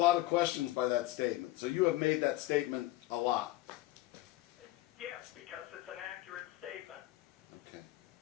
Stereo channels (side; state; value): right; quieter; 17.0 dB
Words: of questions by that statement. So you have made that statement a lot. yes, because it's an accurate statement. Okay.